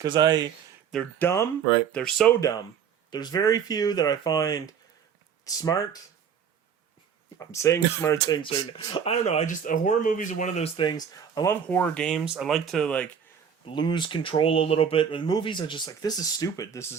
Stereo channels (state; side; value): quieter; left; 7.5 dB